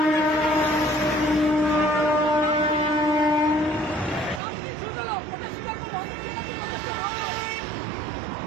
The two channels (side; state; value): left; drops out; at 4.4 s